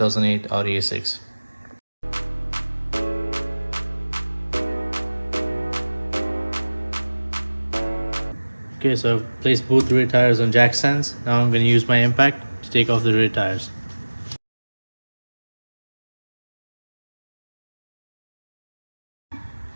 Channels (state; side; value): inverted; both; correlation -1.00